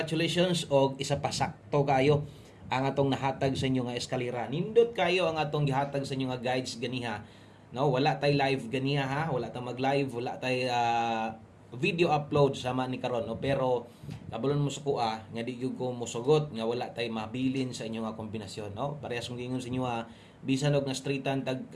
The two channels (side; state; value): both; identical; correlation 1.00